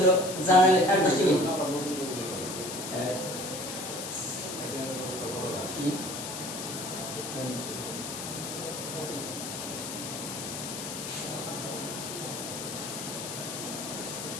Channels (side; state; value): left; noise; hiss, 7 dB below the sound